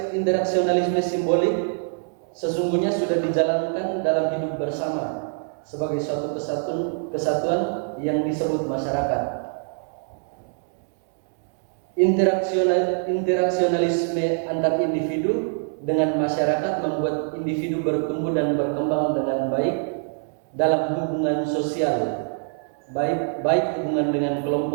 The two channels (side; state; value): left; silent; 62 dB below the other